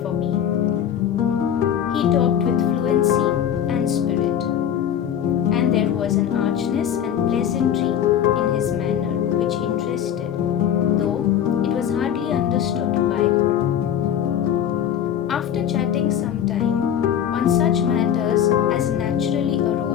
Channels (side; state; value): right; quieter; 9.6 dB